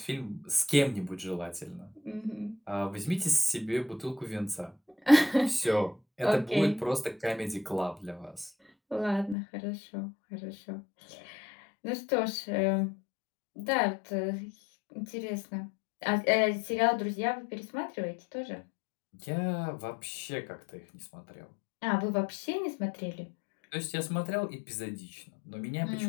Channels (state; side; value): drops out; right; at 9.3 s